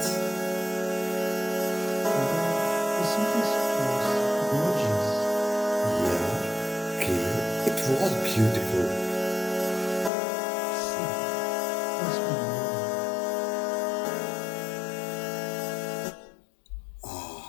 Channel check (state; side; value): drops out; right; at 10.1 s